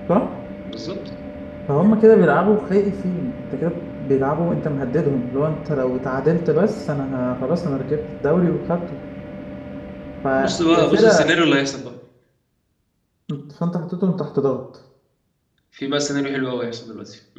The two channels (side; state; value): both; identical; correlation 1.00